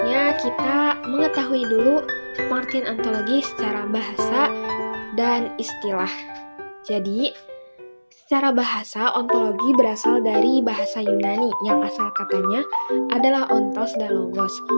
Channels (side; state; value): both; inverted; correlation -1.00